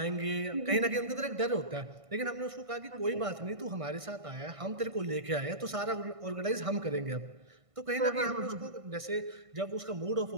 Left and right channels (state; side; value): late; left; 1.5 ms